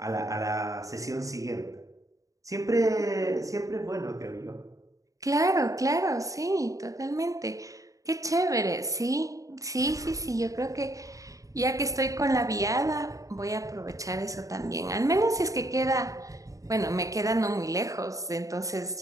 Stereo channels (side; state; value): left; late; 0.16 ms